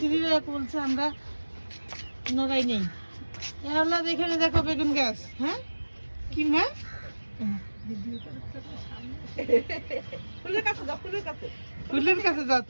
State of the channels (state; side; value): inverted; both; correlation -1.00